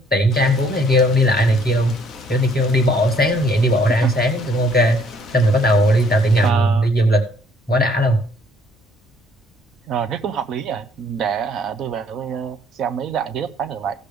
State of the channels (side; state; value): both; normal; correlation 0.62